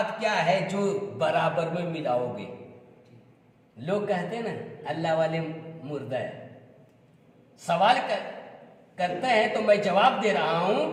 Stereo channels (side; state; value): both; identical; correlation 1.00